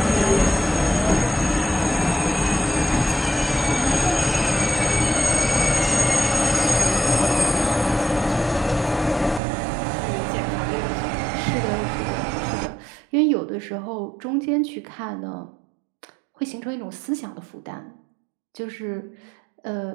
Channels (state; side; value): drops out; left; at 9.4 s